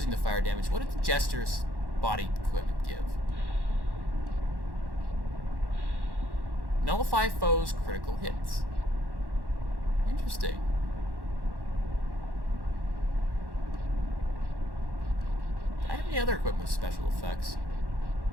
the fire damage, what did the Jester's body equipment give? Nullify foes' critical hits. Interesting. Do I have any other equipment with special effects?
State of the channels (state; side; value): late; left; 1.1 ms